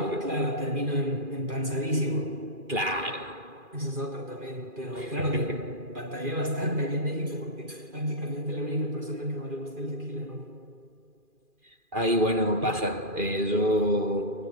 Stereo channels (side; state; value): left; late; 2.4 ms